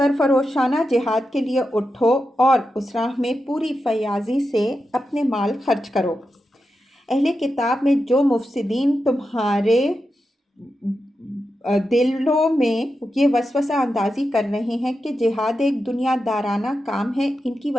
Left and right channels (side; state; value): both; normal; correlation 0.89